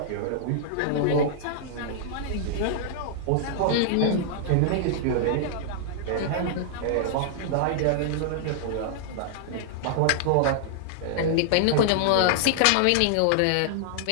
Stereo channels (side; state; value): both; different; correlation -0.01